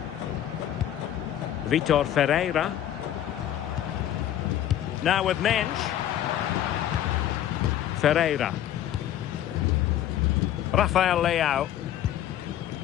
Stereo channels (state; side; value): quieter; right; 11.5 dB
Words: Vitor Ferreira. Now with Mensch. Ferreira. Rafael Leao.